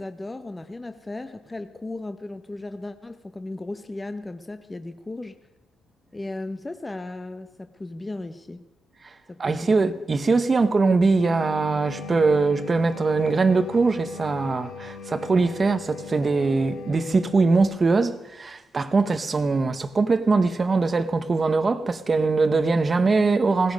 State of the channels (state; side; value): quieter; left; 3.3 dB